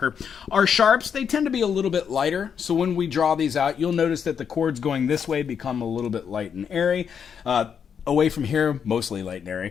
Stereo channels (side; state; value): right; quieter; 7.3 dB